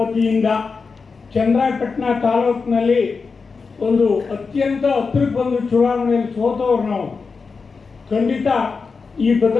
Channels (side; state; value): right; quieter; 4.8 dB